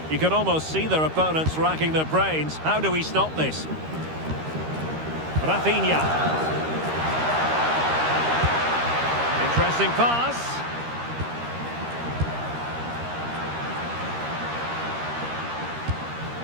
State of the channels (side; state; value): left; late; 13 ms